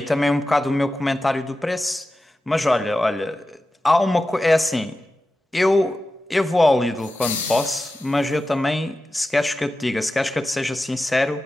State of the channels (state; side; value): normal; both; correlation 0.93